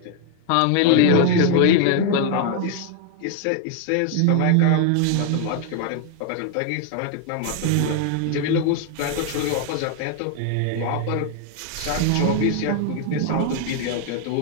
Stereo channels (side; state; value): both; different; correlation 0.01